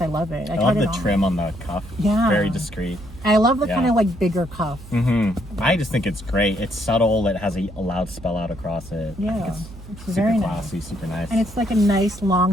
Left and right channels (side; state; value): right; noise; hum, 16 dB below the sound